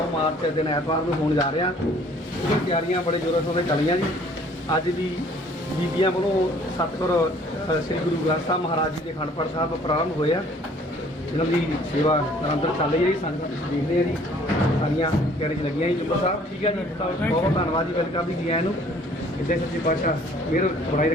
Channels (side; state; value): both; normal; correlation 0.56